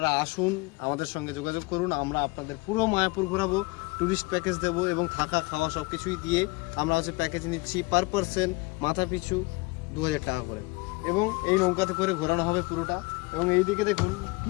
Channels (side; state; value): right; quieter; 25.2 dB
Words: আসুন, আমাদের সঙ্গে যোগাযোগ করুন, আমরা আপনাদের পুরো মায়াপুর ঘোরাবো, ট্যুরিস্ট প্যাকেজ দেবো এবং থাকা খাওয়া সব কিছুই দিয়ে আমরা প্যাকেজ নিচ্ছি পার পারসন মাথা পিছু 2000 টাকা করে। এবং এই নৌকাতে করে ঘোরানো হবে পুরোটা। এবং এই দিকে দেখুন